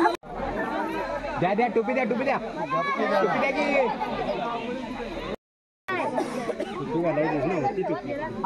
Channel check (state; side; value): identical; both; correlation 1.00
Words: द्या द्या टोपी द्या, टोपी द्या, टोपी द्या की टोपी घालायची ना, होती टोपी.